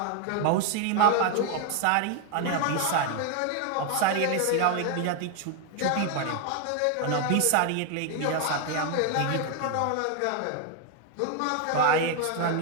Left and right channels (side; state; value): both; different; correlation 0.01